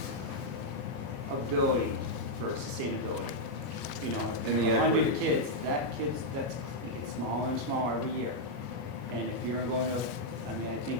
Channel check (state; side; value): late; left; 14 ms